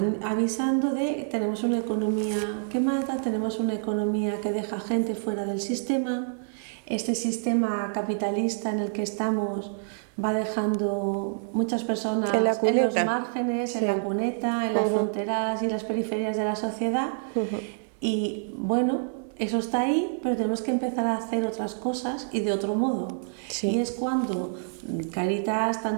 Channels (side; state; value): left; silent; 60 dB below the other